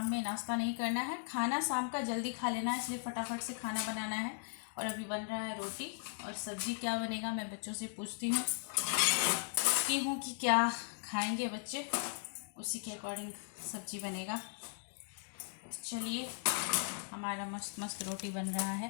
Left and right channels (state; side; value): silent; right; digital silence